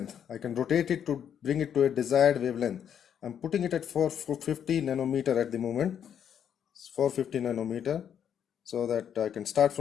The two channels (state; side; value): quieter; right; 8.8 dB